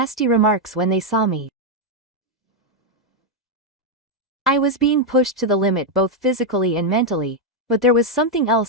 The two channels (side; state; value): both; normal; correlation 0.01